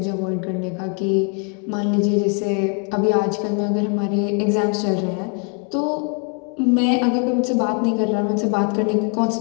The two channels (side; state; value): right; quieter; 35.3 dB